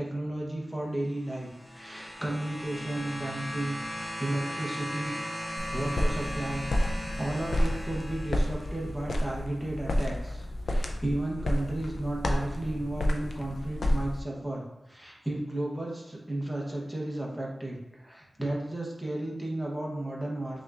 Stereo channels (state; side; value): normal; both; correlation 0.96